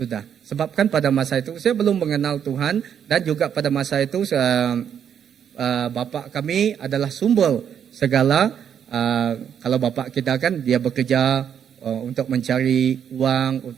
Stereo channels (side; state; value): left; quieter; 8.5 dB